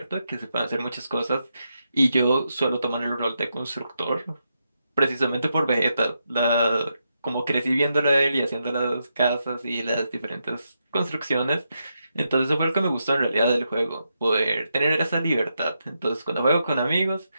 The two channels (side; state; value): both; inverted; correlation -0.84